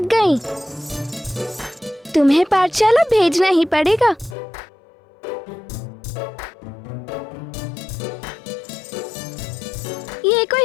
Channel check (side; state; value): right; drops out; at 4.4 s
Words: गई। तुम्हें पाठशाला भेजना ही पड़ेगा। ये